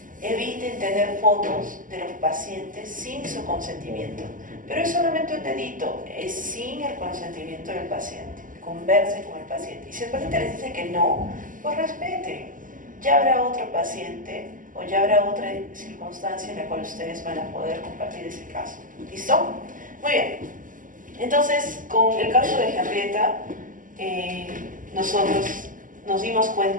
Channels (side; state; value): left; late; 0.38 ms